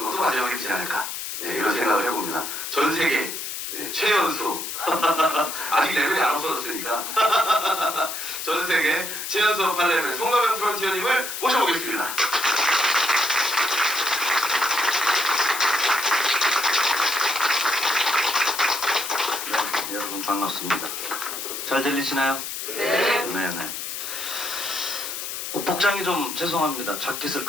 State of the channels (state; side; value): noise; left; hiss, 6 dB below the sound